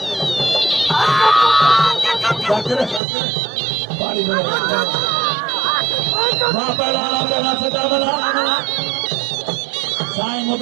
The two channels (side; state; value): left; drops out; at 3.0 s